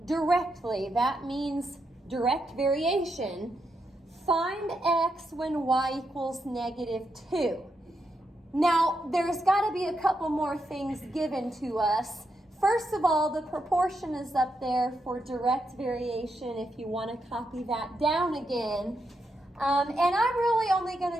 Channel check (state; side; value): normal; both; correlation 0.83